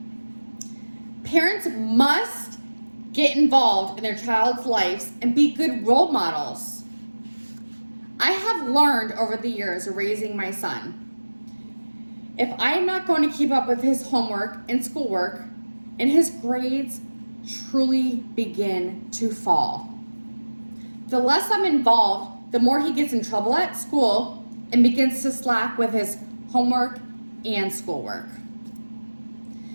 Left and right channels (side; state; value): both; inverted; correlation -1.00